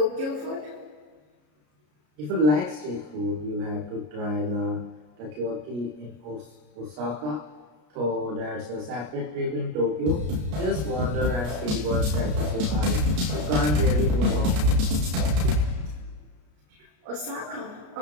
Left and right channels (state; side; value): late; left; 33 ms